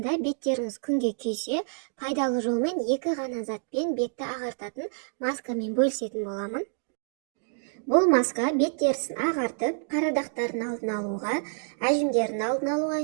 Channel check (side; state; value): left; silent; digital silence